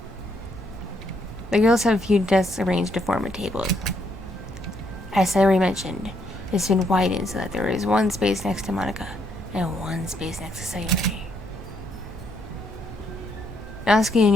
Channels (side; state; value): both; normal; correlation 0.73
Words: The girls have a few desks arranged to form a table. As I already mentioned, it's been widened so that there is one space next to Monica and one space next to Sayori. Natsuki and